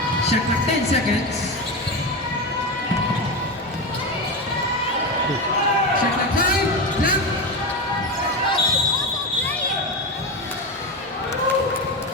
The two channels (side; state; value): both; normal; correlation 0.18